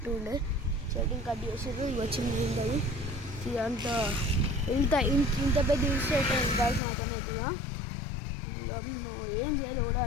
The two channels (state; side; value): drops out; right; at 6.8 s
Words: ఉండే, చెట్టుని కట్ చేసారు, ఇవి వచ్చింది ఉంటుంది. ఇదంతా ఇంత పెద్ద ఇన్స్టేట్ అయింది గాయస్ నాకనైతే. నువ్వు ఏం చేయాలి కూడా